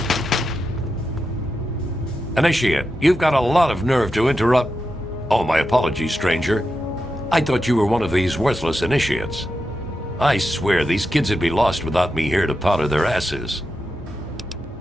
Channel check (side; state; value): both; normal; correlation 0.88